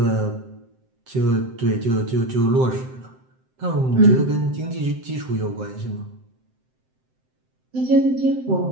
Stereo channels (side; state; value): left; late; 7.7 ms